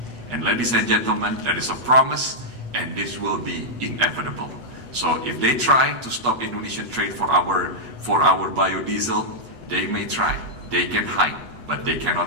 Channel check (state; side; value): late; left; 8.2 ms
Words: And ladies and gentlemen, that is a promise, and this will be inevitable. So if they try to stop Indonesian trade for our biodiesel, they may try. They can hide, but they